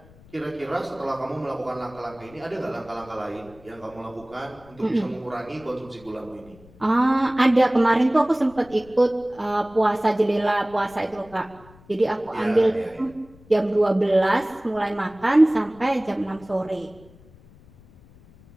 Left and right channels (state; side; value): noise; left; rumble, 25 dB below the sound